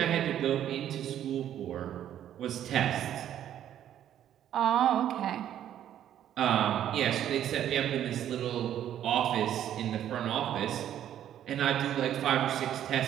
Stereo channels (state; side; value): quieter; left; 10.9 dB